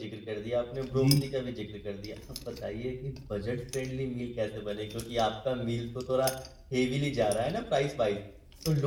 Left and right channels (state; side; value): identical; both; correlation 1.00